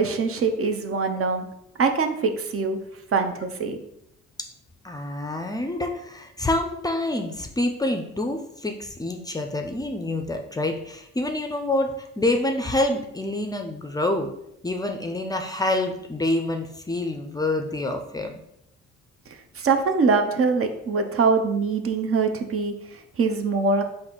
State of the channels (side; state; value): both; normal; correlation 0.31